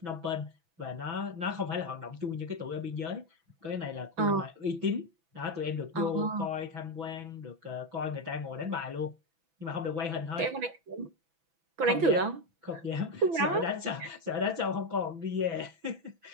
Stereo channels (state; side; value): late; left; 6.0 ms